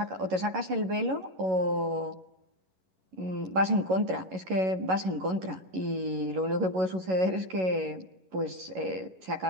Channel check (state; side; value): late; left; 11 ms